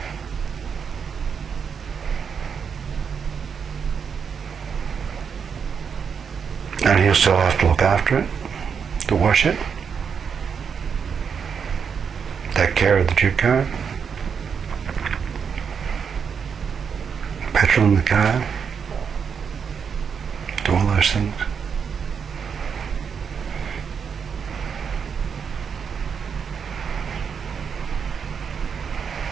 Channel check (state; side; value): quieter; left; 6.6 dB